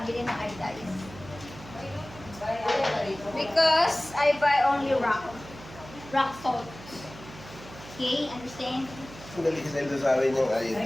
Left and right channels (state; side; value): noise; right; hum, 16 dB below the sound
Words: ng iodize. Wala ka rito. Because I buy only rock salt. Okay, understand? Sandali kasi nito sa amin yung